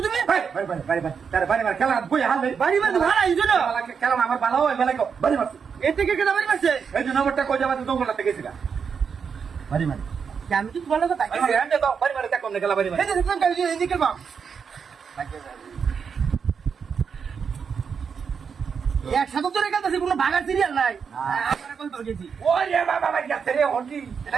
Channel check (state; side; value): quieter; left; 6.4 dB